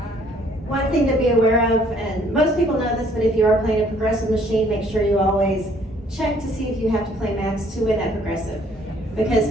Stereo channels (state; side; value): normal; both; correlation 0.61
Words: One thing to be aware of, and most people know this, but if you are playing a progressive machine, make sure you always check to see if you have to play max to win that progressive. because